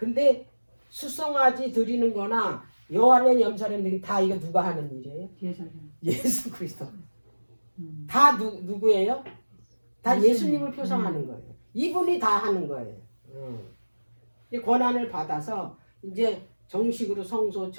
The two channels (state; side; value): inverted; both; correlation -1.00